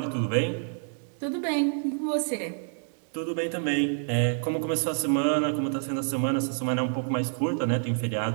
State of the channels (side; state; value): left; silent; 59 dB below the other